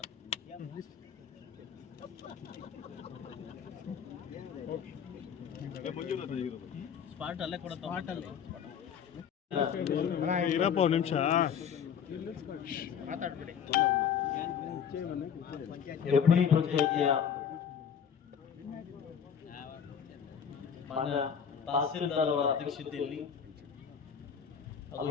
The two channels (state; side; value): quieter; right; 7.7 dB